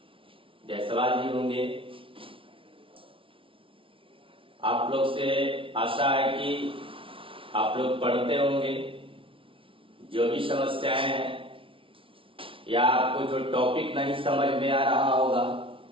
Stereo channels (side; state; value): left; late; 0.25 ms